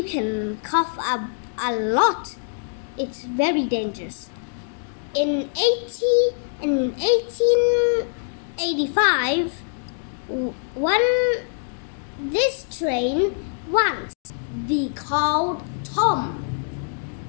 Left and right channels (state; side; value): silent; right; digital silence